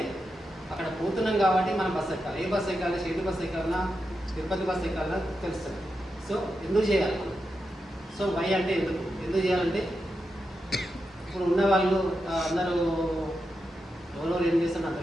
అక్కడ పోతున్నాం కాబట్టి మనం బస్సు ఎక్కాలి. ఏ బస్సు ఎక్కాలి, షిరిడి బస్సు ఎక్కాలన్నా, తిరుపతి బస్సు ఎక్కాలన్నా తెలుస్తుంది. సో ఎందుకు చేయాలి మనం? సో వై అంటే ఎందుకు చేయాలంటే ఇప్పుడు ఉన్న వాళ్ళు అందరూ ఎవరో ఏం చేస్తారో నాకు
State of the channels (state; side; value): normal; both; correlation 0.88